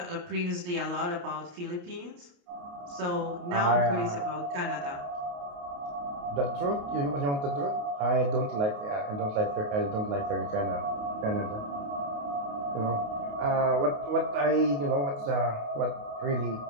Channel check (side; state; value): left; late; 28 ms